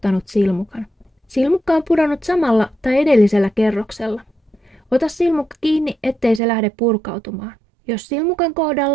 silmukan? Silmukka on pudonnut samalla tai edellisellä kerroksella. Ota silmukka kiinni, ettei se lähde purkautumaan. Jos silmukan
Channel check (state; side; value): drops out; left; at 6.4 s